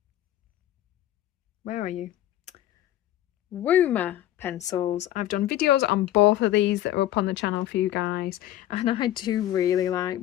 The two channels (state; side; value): quieter; right; 13.3 dB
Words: where are you? Woomer pencils. I've done videos on both of these that are up on the channel for you guys, and I do really